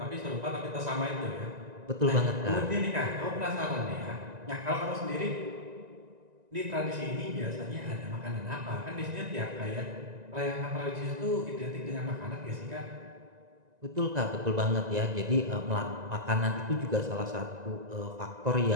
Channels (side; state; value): left; late; 1.9 ms